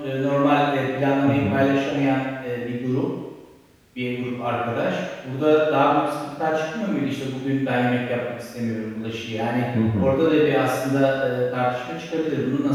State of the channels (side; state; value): both; identical; correlation 1.00